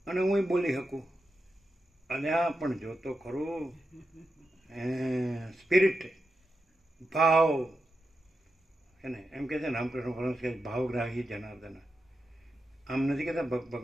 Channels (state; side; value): normal; both; correlation 0.88